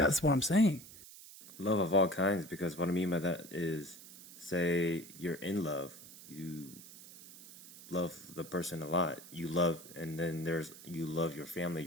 what I'm saying. Love of all kinds, because what I mean by that is, say you're in love, you love the person a lot. You love, and then you love your family,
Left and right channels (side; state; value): right; noise; hiss, 17 dB below the sound